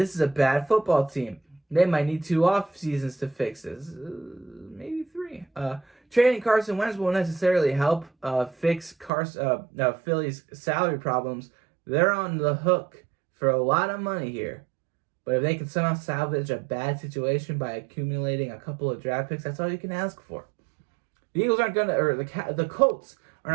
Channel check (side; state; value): left; drops out; at 9.1 s